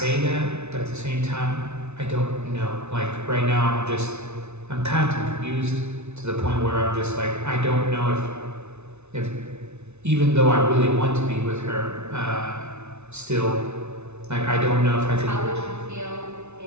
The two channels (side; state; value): left; late; 0.81 ms